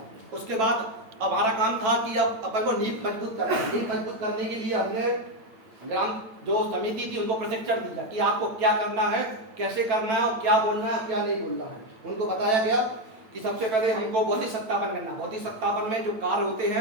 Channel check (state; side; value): late; left; 9.0 ms